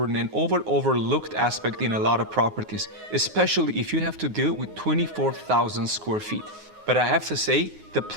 and overlooked aspect in a lot of properties, especially if you have to deal with 24,000 square feet. But I have to say, the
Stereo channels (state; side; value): late; left; 9.5 ms